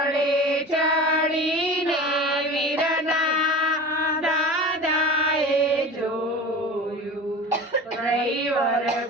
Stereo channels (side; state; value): both; normal; correlation 0.35